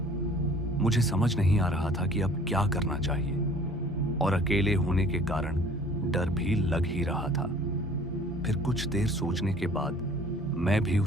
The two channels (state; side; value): normal; both; correlation 0.51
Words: मुझे समझ नहीं आ रहा था कि अब क्या करना चाहिए और अकेले होने के कारण डर भी लग ही रहा था। फिर कुछ देर सोचने के बाद मैं भी